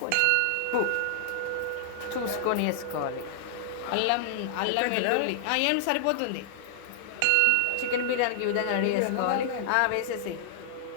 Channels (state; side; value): different; both; correlation -0.01